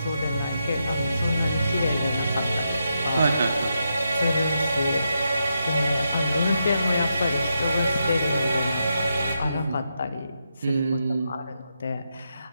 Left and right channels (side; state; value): both; inverted; correlation -0.83